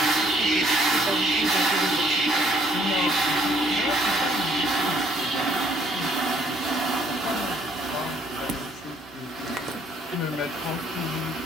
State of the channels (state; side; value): normal; both; correlation 0.64